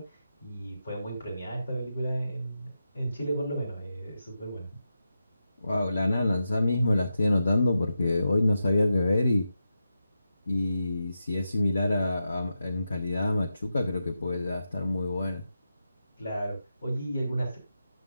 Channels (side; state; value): both; inverted; correlation -0.88